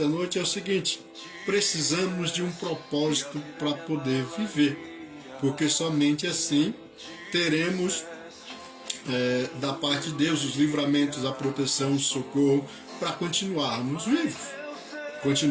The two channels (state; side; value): identical; both; correlation 1.00